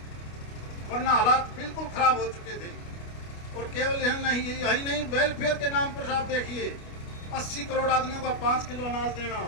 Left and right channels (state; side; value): late; right; 29 ms